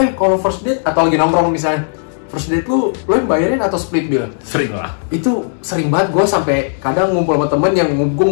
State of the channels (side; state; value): right; silent; 70 dB below the other